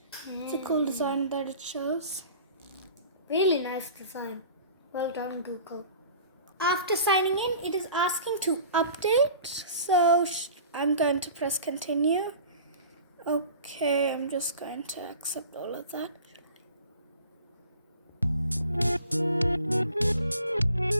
It's a cool design that it shows. Really nice design. Well done, Google. After signing in, it is asking to update. So I'm going to press continue. Okay, I'm just going to accept all of that.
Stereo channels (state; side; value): inverted; both; correlation -0.44